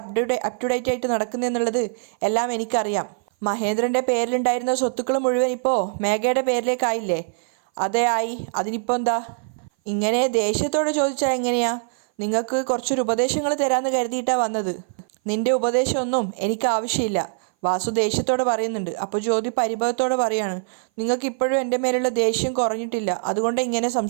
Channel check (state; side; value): silent; left; 58 dB below the other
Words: ടു ഡേറ്റ് ആയിട്ട് നടക്കുന്നതെന്നുള്ളത് എല്ലാം എനിക്കറിയാം. മഹേന്ദ്രൻ്റെ പേരിലുണ്ടായിരുന്ന സ്വത്തുക്കൾ മുഴുവൻ ഇപ്പോൾ മേഘയുടെ പേരിലേക്കായില്ലേ? അതേ ആയി. അതിനിപ്പോൾ എന്താ? ഇങ്ങനെ ദേഷ്യത്തോടെ ചോദിച്ചാൽ എങ്ങനെയാ? നിങ്ങൾക്ക് കുറച്ചൊരു ഉപദേശങ്ങൾ തരാമെന്ന് കരുതിയിട്ടാണ് വന്നത്. നിന്റെ ഉപദേശമൊന്നും എനിക്ക് ആവശ്യമില്ല, വാസു ദേഷ്യത്തോടെ പറയുന്നുണ്ട്. അപ്പോൾ ജ്യോതി പരിഭവത്തോടെ പറയാണ്, നിങ്ങൾക്ക് ഇപ്പോഴും എൻ്റെ മേലുള്ള ദേഷ്യം കുറഞ്ഞിട്ടില്ല, അതുകൊണ്ട് ഇങ്ങനെ